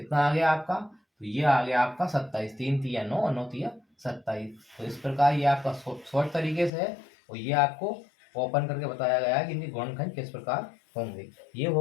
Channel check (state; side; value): drops out; right; at 6.7 s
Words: आ गया आपका, तो ये आ गया आपका 27। 3 तिया 9 और 9 तिया 27। तो इस प्रकार ये आपका शॉर्ट तरीके से है और ये आपको ओपन करके बताया गया है कि इनके गुणनखंड किस प्रकार होंगे। ये